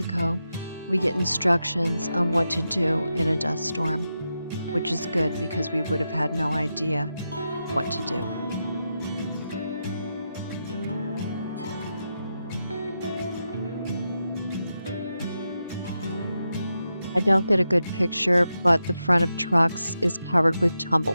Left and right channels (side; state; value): both; inverted; correlation -0.88